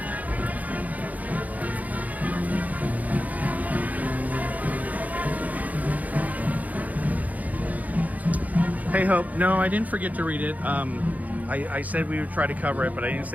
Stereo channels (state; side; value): late; left; 0.077 ms